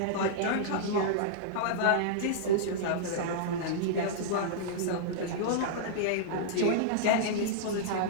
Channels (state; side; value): different; both; correlation -0.02